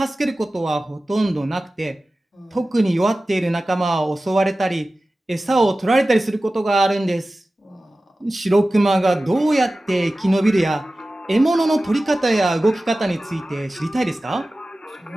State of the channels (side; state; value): both; normal; correlation 0.96